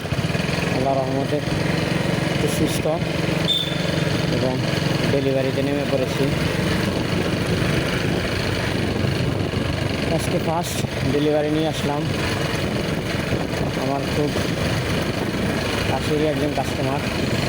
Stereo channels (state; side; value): identical; both; correlation 1.00